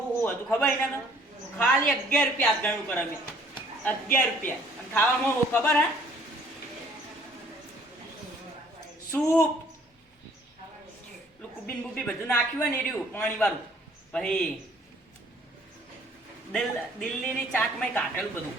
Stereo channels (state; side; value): normal; both; correlation 0.58